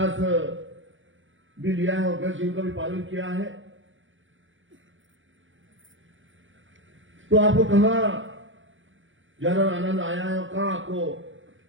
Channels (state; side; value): late; left; 0.56 ms